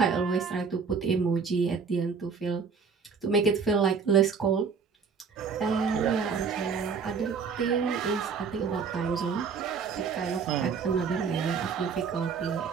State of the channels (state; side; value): quieter; left; 5.7 dB